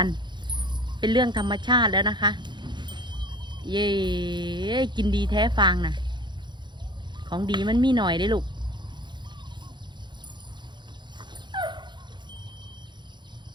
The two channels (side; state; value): left; late; 0.22 ms